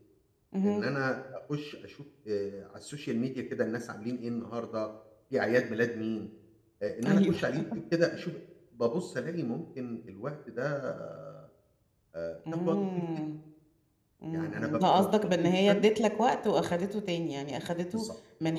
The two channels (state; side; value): identical; both; correlation 1.00